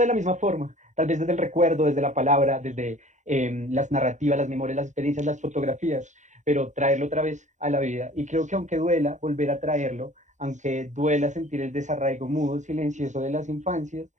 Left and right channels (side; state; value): left; late; 0.35 ms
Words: la misma forma, tal vez desde el recuerdo, desde la palabra, desde las narrativas, las memorias, las experiencias, las fotografías, pero traerlo otra vez a la vida. Y creo que aunque duela volver a traerlo, aunque duela sentir el desarraigo mudo, silencioso de las infancias,